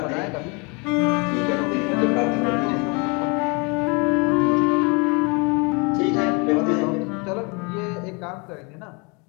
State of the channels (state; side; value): quieter; right; 30.9 dB